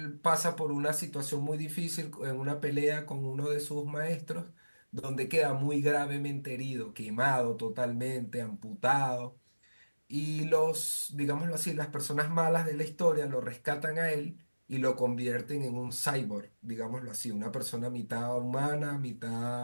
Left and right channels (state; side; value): inverted; both; correlation -1.00